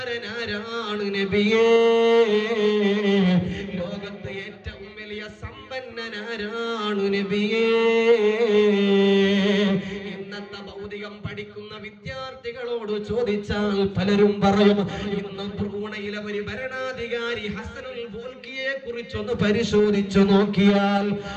ആരാണ് നബിയേ? ലോകത്ത് ഏറ്റവും വലിയ സമ്പന്നനാരാണ് നബിയേ? ഇന്നത്തെ ഭൗതികം പഠിക്കുന്ന വിദ്യാർത്ഥികളോട് ചോദിച്ചാൽ പലരും പറയും, ഇന്ന് ബ്രൂണയിലെ ഒരു ഭരണാധികാരി ഹസനുൽ ബോൽക്കിയെ കുറിച്ചൊന്ന് പരിശോധിച്ചു നോക്കിയാൽ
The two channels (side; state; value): both; identical; correlation 1.00